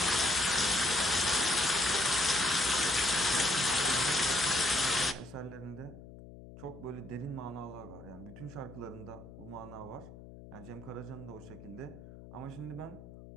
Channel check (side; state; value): left; noise; hum, 16 dB below the sound